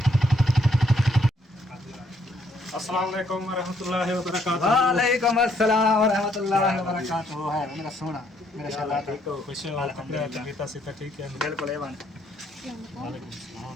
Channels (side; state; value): both; normal; correlation 0.70